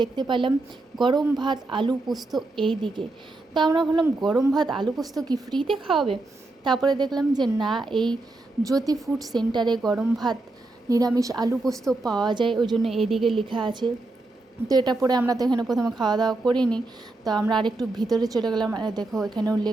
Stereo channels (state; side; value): quieter; left; 3.0 dB